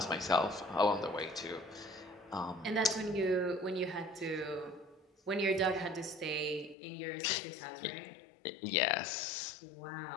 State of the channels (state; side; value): drops out; right; at 6.8 s